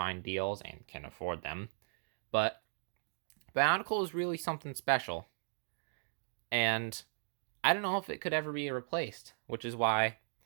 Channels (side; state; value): left; silent; digital silence